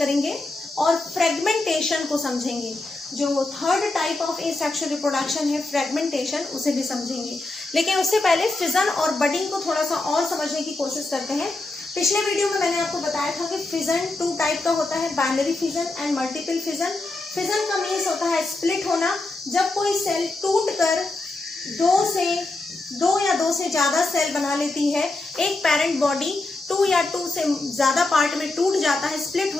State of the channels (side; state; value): right; quieter; 3.0 dB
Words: और फ्रेगमेंटेशन को समझेंगे। जो third type of asexual reproduction है फ्रेगमेंटेशन, उसे भी समझेंगे। लेकिन उससे पहले फिजन और बडिंग को थोड़ा सा और समझने की कोशिश करते हैं। पिछले वीडियो में मैंने आपको बताया था कि फिजन 2 टाइप का होता है, binary fission and multiple fission. Fission का मीन्स होता है स्प्लिट होना, जब कोई सेल टूट कर दो या दो से ज्यादा सेल बना लेती है। एक पेरेंट बॉडी 2 या 2 से ज्यादा पार्ट में टूट जाता है, स्प्लिट